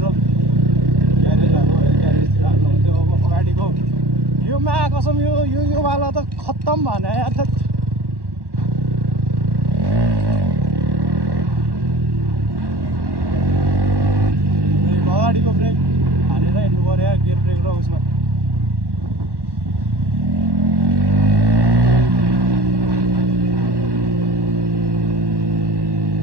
ग्यारेज भएको ग्यारेजतिर हाल्नु हुन्थ्यो। अब अगाडिको यो मा कसम यो वाला त खत्तम भने यार। अगाडिको ब्रेक हालेर हिँड्नु पर्यो यार। गियर ब्रेक र उसमा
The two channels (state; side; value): late; left; 1.1 ms